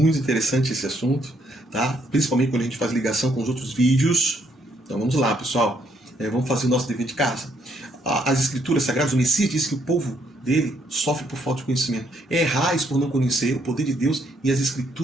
interessante esse assunto, tá? Principalmente quando a gente faz ligação com os outros vídeos. Então vamos lá, pessoal. Vamos fazer o nosso dever de casa. As escrituras sagradas, o Messias disse que o povo dele sofre por falta de conhecimento. Errais por não conhecer o poder de Deus e as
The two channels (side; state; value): both; normal; correlation 0.71